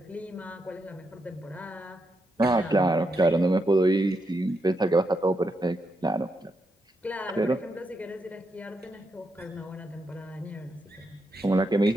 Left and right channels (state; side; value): normal; both; correlation 0.82